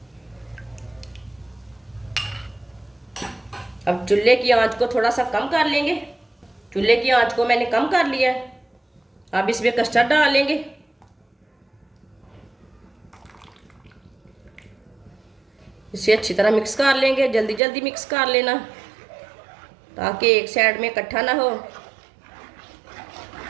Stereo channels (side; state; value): left; drops out; at 17.6 s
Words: अब चूल्हे की आंच को थोड़ा सा कम कर लेंगे। चूल्हे की आंच को मैंने कम कर लिया है। अब इसमें कस्टर्ड डाल लेंगे। इसे अच्छी तरह मिक्स कर लेंगे। जल्दी जल्दी मिक्स कर लेना ताकि एक साइड में इकट्ठा ना हो।